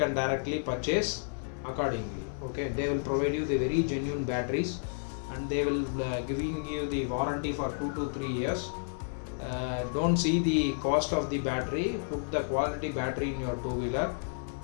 directly purchase accordingly. Okay, they will provide you the very genuine batteries, and they will giving you the warranty for 2 to 3 years. Don't see the cost of the battery, put the quality battery in your two-wheeler.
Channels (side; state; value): right; silent; digital silence